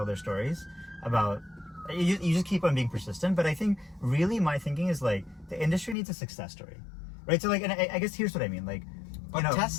their stories about. You just keep on being persistent, but I think really my thinking is like the industry needs a success story, right? So like, and I guess here's what I mean, like. But you know,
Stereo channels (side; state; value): right; drops out; at 6.0 s